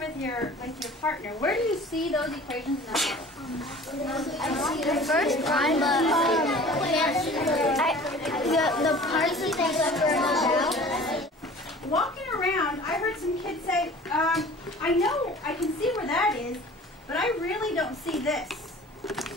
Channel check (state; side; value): normal; both; correlation 0.44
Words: with your partner. Where do you see those equations in the model? The first one, but the parts that they about. Walking around, I heard some kids say, I know, I can see where that is, but I really don't see this.